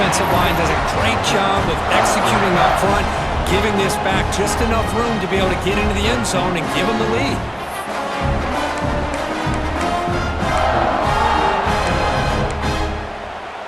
line does a great job of executing up front, giving this back just enough room to be able to get into the end zone and give them the lead.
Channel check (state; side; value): identical; both; correlation 1.00